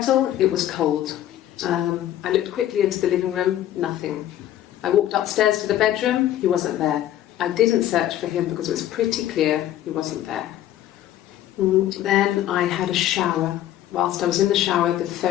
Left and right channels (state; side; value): quieter; right; 12.5 dB